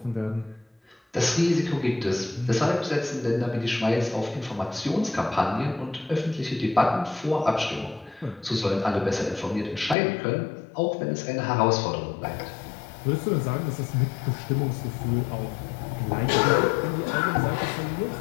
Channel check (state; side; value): drops out; right; at 10.0 s